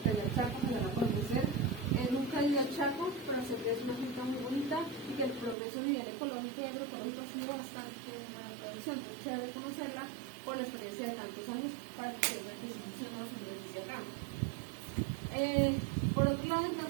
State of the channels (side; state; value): left; drops out; at 5.6 s